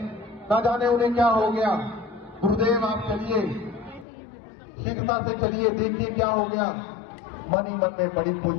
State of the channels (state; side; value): drops out; right; at 4.0 s